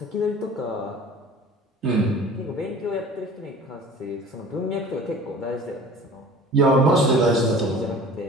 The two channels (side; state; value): both; normal; correlation 0.43